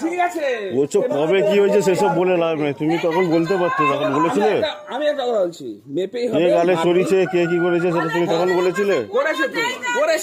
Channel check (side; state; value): both; identical; correlation 1.00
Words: ঠিক আছে, বলছো কবে কি হয়েছে সেসব বলে লাভ নেই, তুমি তখন বলতে পারতো, তখন বলেছিলে। আমি একটা কথা বলছি, মেপেই কে হবে। গালে সরিয়েছে, কে কি করেছে সেটা তুমি তখন বলেছিলে। করেছে তো,